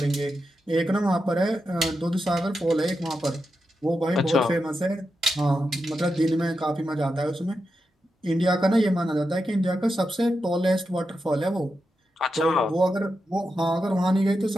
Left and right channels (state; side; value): normal; both; correlation 0.88